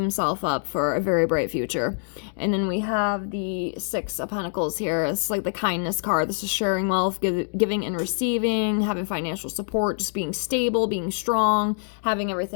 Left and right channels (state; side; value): silent; right; digital silence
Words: up for a very bright future. And then we have the Six of Pentacles here. It's like the kindness card. This is sharing wealth, giving and receiving, having financial support, just being stable, being strong, having